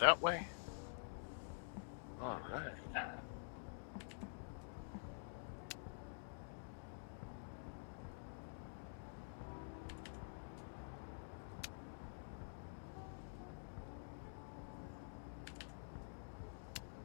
way. All right.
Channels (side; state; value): right; silent; digital silence